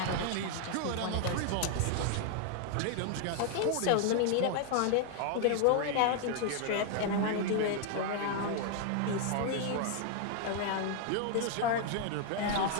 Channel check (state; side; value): different; both; correlation 0.00